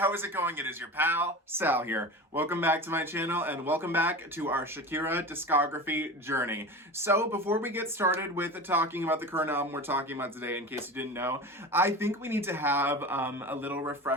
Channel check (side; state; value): both; normal; correlation 0.31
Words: is it going? It is your pal, Sal here. Welcome back to my channel and welcome back to our Shakira discography journey. So before we get started with talking about the current album we're talking about today, in case you didn't know, I think we need to have a little